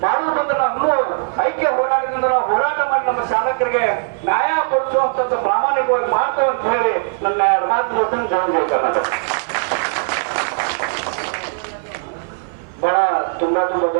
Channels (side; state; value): left; silent; 58 dB below the other